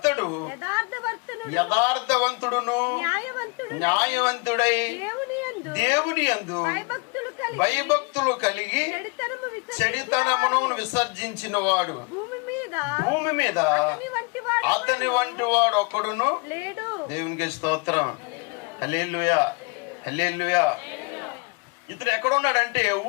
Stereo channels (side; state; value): right; quieter; 31.4 dB